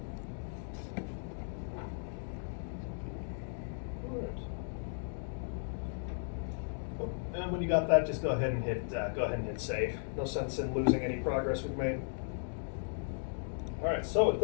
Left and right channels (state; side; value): silent; right; digital silence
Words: when you got that, just go ahead and hit save. No sense in losing any progress we've made. All right, so at